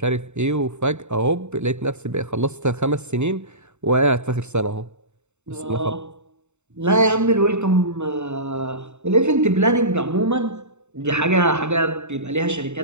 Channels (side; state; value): left; late; 0.83 ms